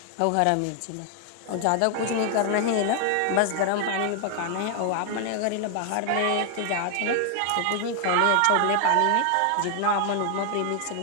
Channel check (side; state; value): both; different; correlation 0.00